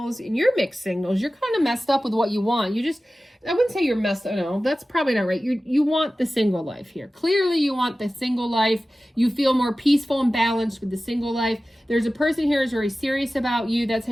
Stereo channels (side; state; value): both; normal; correlation 0.96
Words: and you're mixed signals. You're kind of messed up with what you want. I wouldn't say you're messed up. No, that's probably not right. You want the single life here. Clearly, you want the single life. You feel more peaceful and balanced with the single life. There's a person here who's very serious about you. That's how